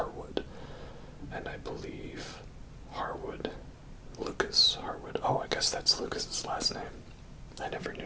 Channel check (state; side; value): identical; both; correlation 1.00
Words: And I believe Lucas Harwood. Oh, I guess that's Lucas's last name. I never